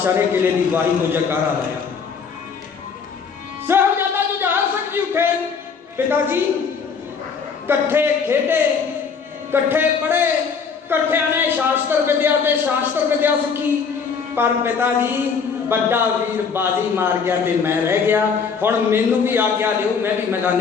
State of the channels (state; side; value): quieter; right; 5.9 dB